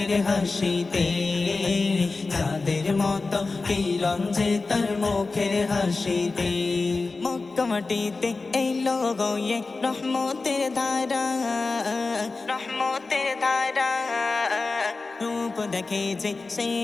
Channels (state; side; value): quieter; right; 3.8 dB